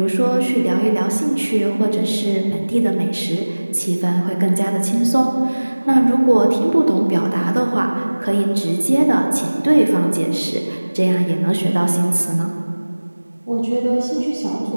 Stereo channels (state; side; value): inverted; both; correlation -1.00